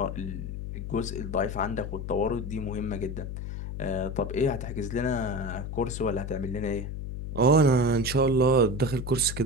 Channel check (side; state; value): left; noise; hum, 6 dB below the sound